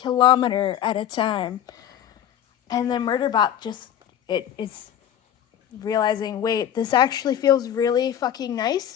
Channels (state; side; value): quieter; right; 10.4 dB